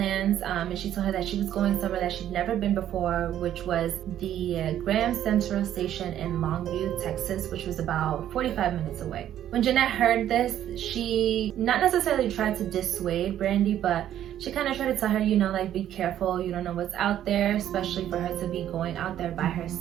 and she told her that she was going somewhere that she'd never been before, which was the Graham Central Station in Longview, Texas, which was about 45 minutes away. When Jeanette heard this, she not necessarily tried to dissuade Brandi, but she kind of tried to tell her, like, be careful, you don't know what's out there, especially for her to be going out there by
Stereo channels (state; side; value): quieter; left; 11.3 dB